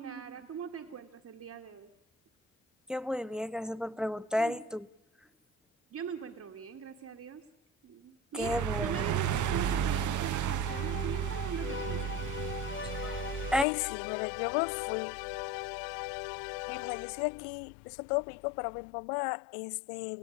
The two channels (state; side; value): drops out; right; at 13.7 s